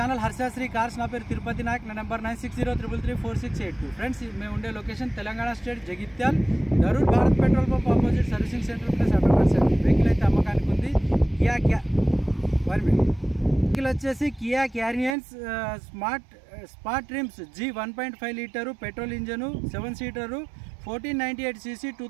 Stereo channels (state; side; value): drops out; left; at 15.2 s